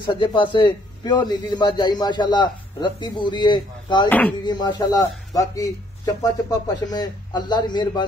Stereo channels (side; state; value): both; normal; correlation 0.65